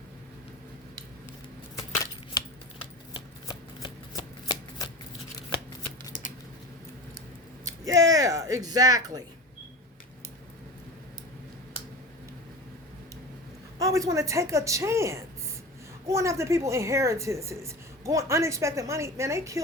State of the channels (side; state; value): both; normal; correlation 0.31